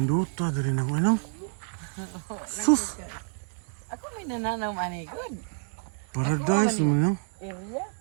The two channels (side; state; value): left; silent; 59 dB below the other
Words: dire na ko nang. Sus. Ako may nananaw ani good. Paradise man Area.